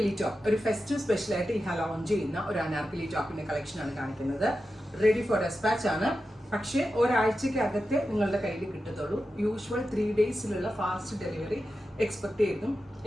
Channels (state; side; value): normal; both; correlation 0.91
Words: ടോപ്പ്, ഒരു ഫെസ്റ്റീവ് സ്പെഷ്യൽ ആയിട്ട് ഇഹാ ലോഞ്ച് ചെയ്യുന്ന ഒരു അനാർക്കലി ടോപ്പിന്റെ കളക്ഷൻ ആണ് കാണിക്കുന്നത്. റെഡി ഫോർ ഡെസ്പാച്ച് ആണ്, പക്ഷേ ഒരാഴ്ചക്കകത്തെ നിങ്ങളുടെ കയ്യിൽ കിട്ടത്തുള്ളൂ. യൂഷ്വൽ 3 ഡേയ്സിലുള്ള ഫാസ്റ്റ് ഡെലിവറി എക്സ്പെക്ട് ചെയ്തും